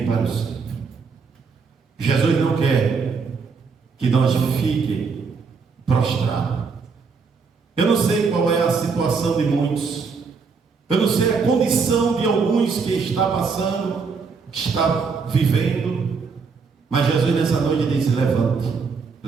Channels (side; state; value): left; quieter; 5.1 dB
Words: para o centro. Jesus não quer que nós fiquemos prostrados. Eu não sei qual é a situação de muitos, eu não sei a condição de alguns que está passando, que está vivendo, mas Jesus nessa noite disse: levante,